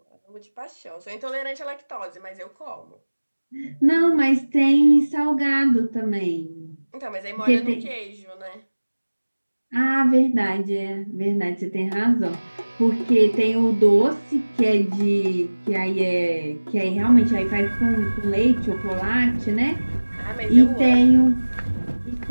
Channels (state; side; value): inverted; both; correlation -1.00